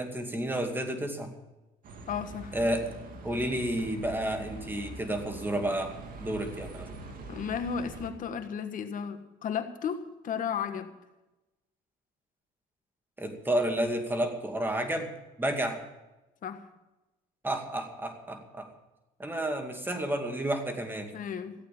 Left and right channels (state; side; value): normal; both; correlation 0.64